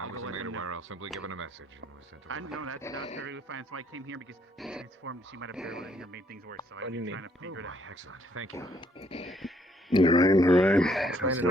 I'll go wasn't let made them know. aware. I'll simply given a message and was sent I away. know that's perfectly fine. So I came here because she transformed. She might have barreled in here, made things worse. So I've been trying to figure it out. Excellent. Thank you. All right, all right. Explain That's it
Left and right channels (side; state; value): both; normal; correlation 0.68